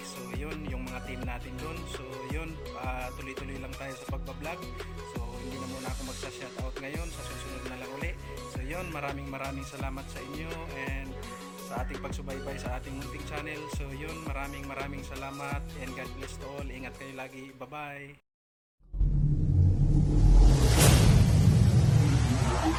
So yun, yung mga team natin doon. So yun, tuloy-tuloy lang tayo sa pagbablog. So hindi na muna ako magsa-shoutout ngayon, sa susunod na lang uli. So yun, maraming salamat sa inyo and sa ating pagsubaybay sa ating munting channel. So yun, maraming salamat and God bless to all. Ingat kayo lagi. Bye-bye.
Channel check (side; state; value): both; identical; correlation 1.00